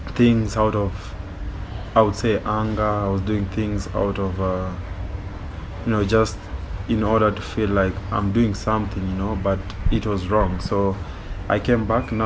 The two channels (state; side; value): identical; both; correlation 1.00